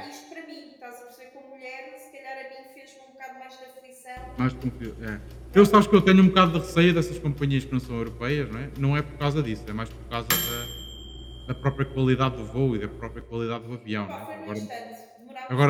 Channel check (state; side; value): identical; both; correlation 1.00